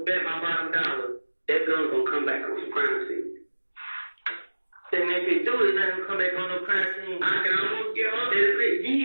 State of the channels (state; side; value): inverted; both; correlation -1.00